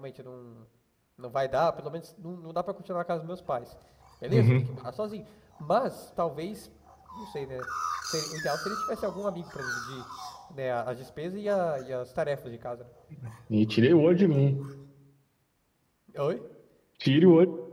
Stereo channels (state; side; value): identical; both; correlation 1.00